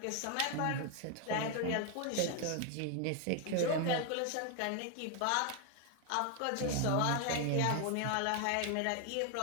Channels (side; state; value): both; different; correlation 0.00